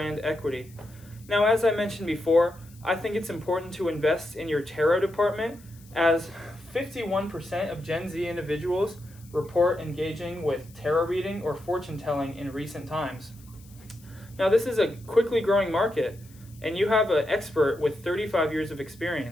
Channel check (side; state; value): left; noise; hiss, 26 dB below the sound